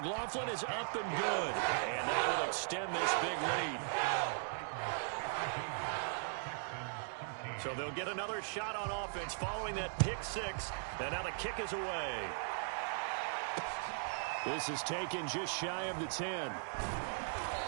is up and good. And that will extend this big lead. So they'll get another shot on offense following that pick 6. And now the kick is away. This is taken just shy of the 10.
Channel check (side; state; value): left; silent; digital silence